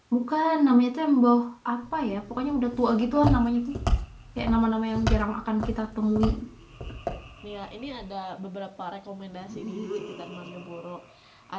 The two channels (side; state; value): both; identical; correlation 1.00